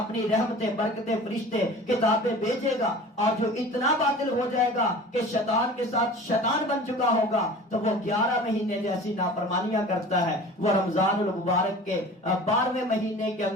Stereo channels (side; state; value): both; normal; correlation 0.40